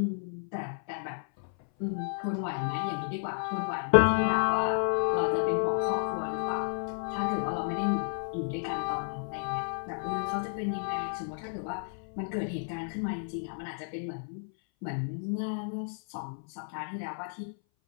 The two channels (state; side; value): silent; right; 57 dB below the other